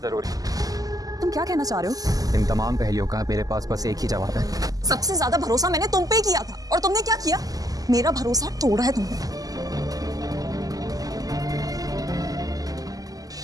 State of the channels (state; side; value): late; left; 0.17 ms